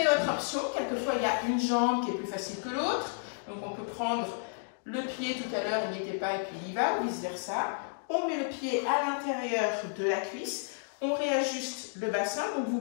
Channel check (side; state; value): right; silent; digital silence